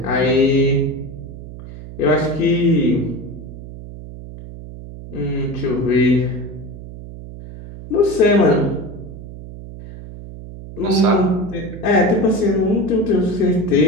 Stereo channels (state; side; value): noise; right; hum, 13 dB below the sound